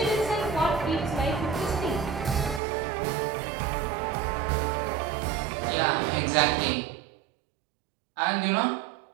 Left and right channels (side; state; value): left; drops out; at 2.6 s